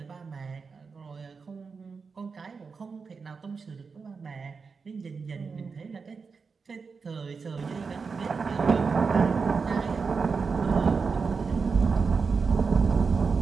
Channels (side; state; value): left; quieter; 5.1 dB